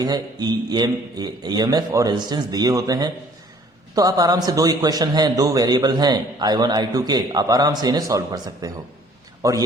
है, EMF और रेजिस्टेंस दिए होते हैं, तो आप आराम से, दो इक्वेशन हैं, दो वेरिएबल हैं I1 I2 के, आप आराम से इन्हें सॉल्व कर सकते हो। और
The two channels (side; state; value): both; normal; correlation 0.56